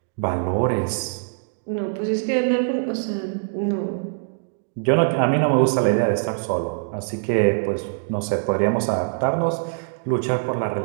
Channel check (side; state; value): left; silent; digital silence